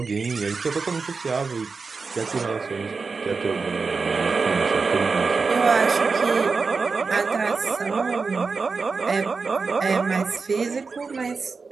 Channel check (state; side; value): quieter; left; 4.6 dB